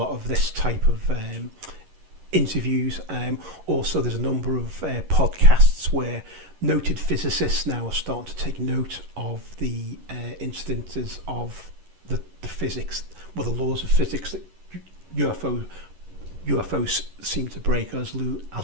of this type of interviews. Also, there's a number of podcasts where noted physicists now are starting to take note of the incidences of the physics, the laws of physics that UFOs seem to break. As Lou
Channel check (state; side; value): late; left; 11 ms